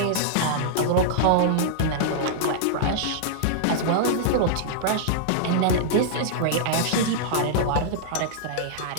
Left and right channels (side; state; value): both; different; correlation -0.02